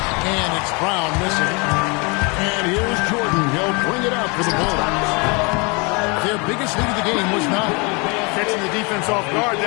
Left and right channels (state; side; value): quieter; right; 30.3 dB